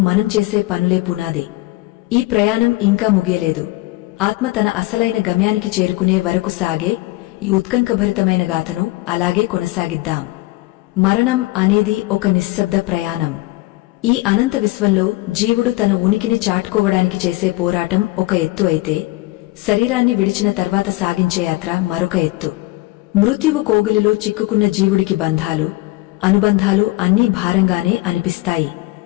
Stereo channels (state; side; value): quieter; right; 20.3 dB